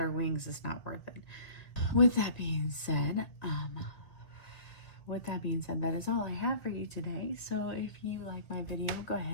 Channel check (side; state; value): right; late; 1.9 ms